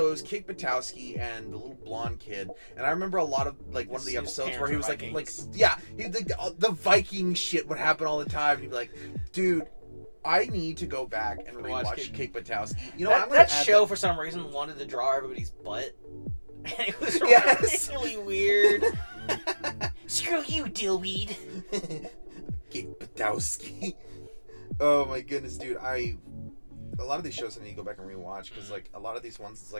it was Kick Butowski and the little blonde kid, and I remember a lot of, like, one of the episodes where he was like, yeah, the Viking shit would happen all the time. He'd be like, dude, I need to go back and rewatch Kick Butowski. You know, that show, for some reason, wanted to draw everybody's butt. And it was really weird. Screw you, dillweed. Kick Butowski. Oh my goodness, dude. a lot of these shows I need to go back and rewatch because like a lot of these ones, it's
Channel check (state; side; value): inverted; both; correlation -1.00